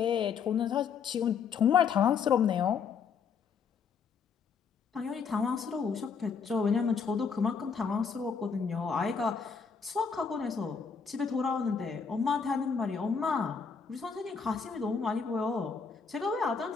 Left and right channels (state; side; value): quieter; right; 6.0 dB